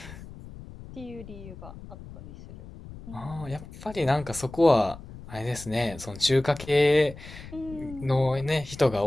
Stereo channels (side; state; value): left; noise; rumble, 15 dB below the sound